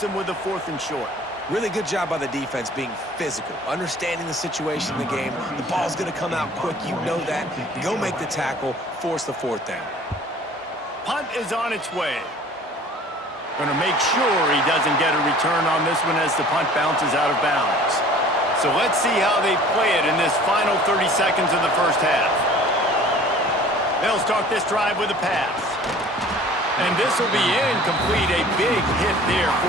them with a 4th and short. Really good job by the defense being physical, understanding the situation in the game. The ball's going to come out quick. You know that. Go make the tackle, force the 4th down. Punt is on its way. Going to make sure he doesn't get a return on this one as the punt bounces out of bounds. So let's see how they play it in this final 30 seconds of the first half. They'll start this drive with a pass. And this will be incomplete. A big hit there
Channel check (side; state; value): both; normal; correlation 0.48